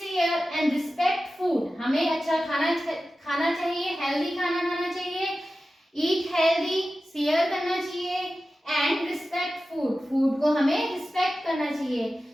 and respect food. हमें अच्छा खाना चाहिए, हेल्दी खाना खाना चाहिए, ईट हेल्दी, शेयर करना चाहिए, एंड रिस्पेक्ट फूड, फूड को हमें रिस्पेक्ट करना चाहिए।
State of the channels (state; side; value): normal; both; correlation 0.94